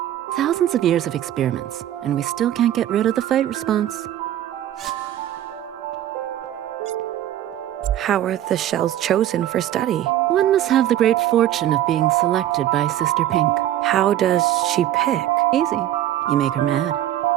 Thousands of years of experiments, and we still can't get rid of the fight response. How are the shells chosen for study? One must have the great fortune of being selected by Sister Pink. How does she pick? Easy. You make her mad.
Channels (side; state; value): left; quieter; 12.4 dB